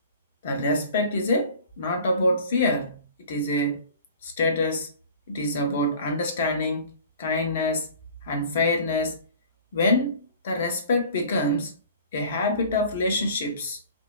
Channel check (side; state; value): both; inverted; correlation -0.45